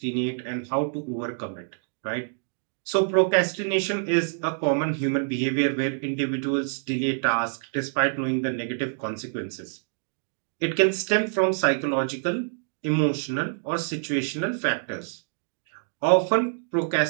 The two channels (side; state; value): left; silent; digital silence